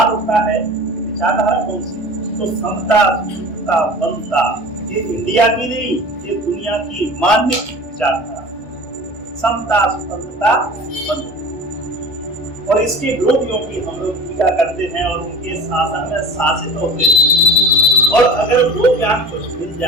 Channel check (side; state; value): both; normal; correlation 0.38